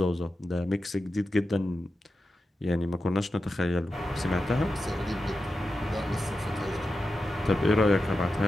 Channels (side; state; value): both; normal; correlation 0.91